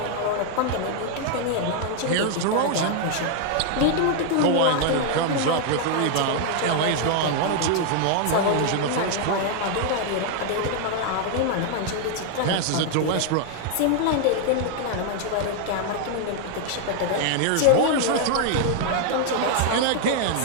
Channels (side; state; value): both; different; correlation 0.00